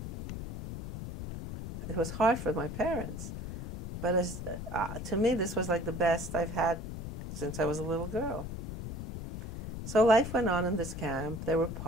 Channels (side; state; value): left; noise; rumble, 6 dB below the sound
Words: It was hard for my parents, but to me, this was like the best I've had since I was a little girl. So life went on in this camp. There were